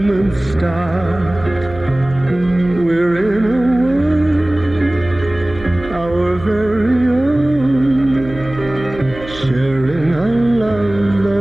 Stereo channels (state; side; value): noise; right; hum, 15 dB below the sound